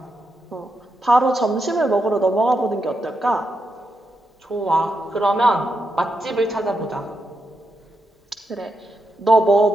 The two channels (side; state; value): both; normal; correlation 0.84